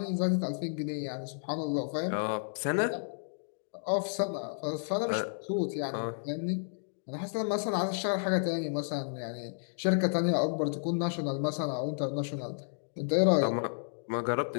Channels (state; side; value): silent; right; digital silence